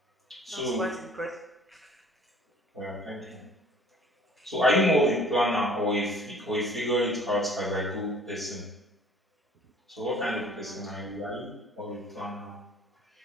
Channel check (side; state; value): both; normal; correlation 0.52